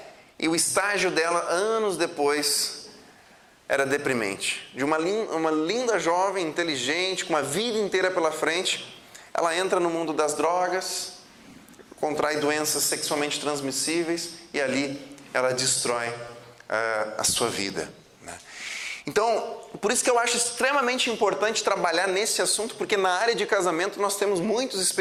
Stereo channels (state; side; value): identical; both; correlation 1.00